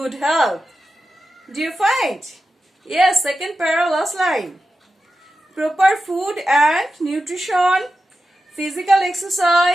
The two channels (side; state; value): both; normal; correlation 0.91